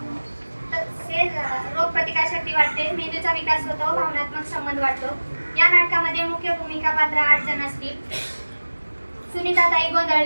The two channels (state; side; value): inverted; both; correlation -1.00